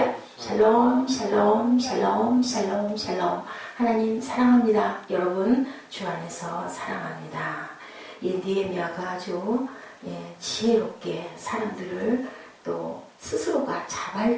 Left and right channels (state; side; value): identical; both; correlation 1.00